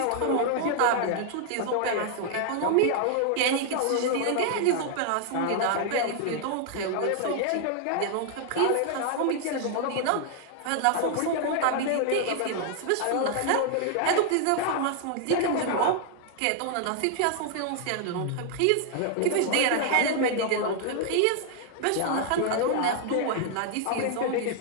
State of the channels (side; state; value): both; different; correlation 0.00